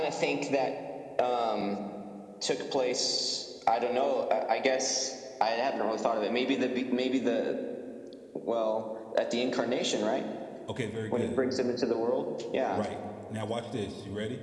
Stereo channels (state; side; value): identical; both; correlation 1.00